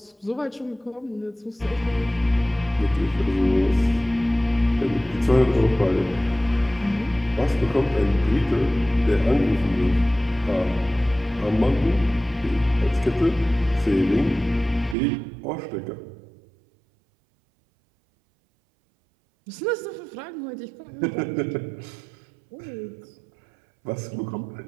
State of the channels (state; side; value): drops out; left; at 15.0 s